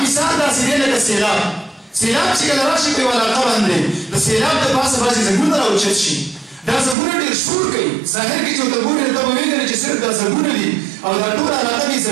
مثال داسې دی لکه سیلاب سیلاب چې کله راشي په یوه علاقه باندې د سیلاب د پاسه بعضې ځنګلونه راوچت شي دا ځنګلونه ډېر شور کوي ظاهر کې چې ورته ګورې نو ته به وینې چې صرف دا ځنګلونه دي او دا ټوله علاقه دې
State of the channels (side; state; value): left; drops out; at 7.0 s